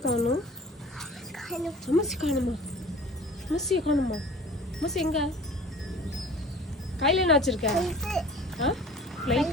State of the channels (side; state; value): both; normal; correlation 0.44